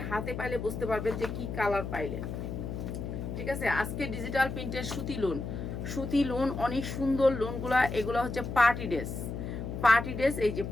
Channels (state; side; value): noise; left; hum, 5 dB below the sound